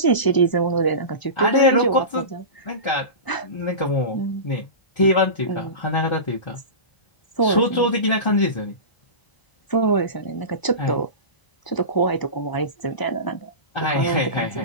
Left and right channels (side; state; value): right; late; 1.0 ms